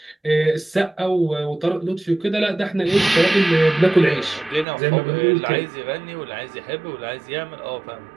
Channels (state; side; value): drops out; left; at 4.7 s